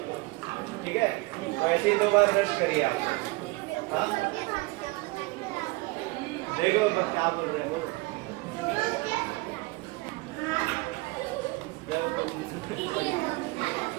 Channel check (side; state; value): left; quieter; 23.5 dB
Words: को, ठीक है? तो ऐसे ही 2 बार ब्रश करिए आप। हाँ देखो क्या बोल रहे हैं वो।